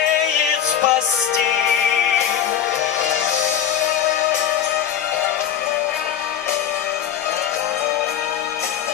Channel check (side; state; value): right; quieter; 9.5 dB